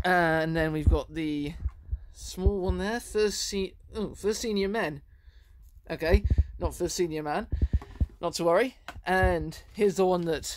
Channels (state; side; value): identical; both; correlation 1.00